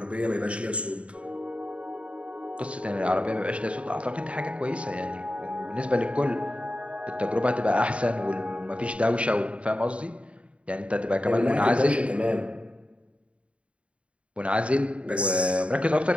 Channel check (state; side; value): late; left; 0.061 ms